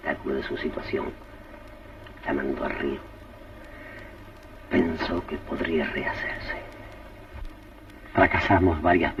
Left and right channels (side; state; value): both; identical; correlation 1.00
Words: de su situación, la mandó al río. Pensó que podría rehacerse. Fracasamos varias